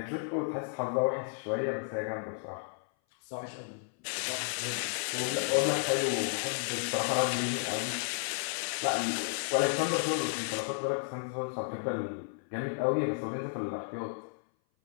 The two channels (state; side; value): silent; right; 56 dB below the other